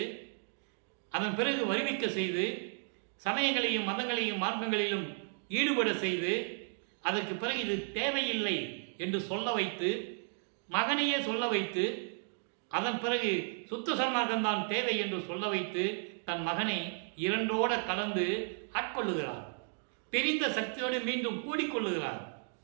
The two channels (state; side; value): silent; left; 55 dB below the other